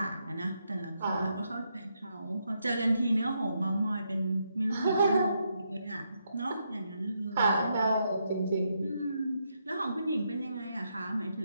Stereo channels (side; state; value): both; inverted; correlation -0.80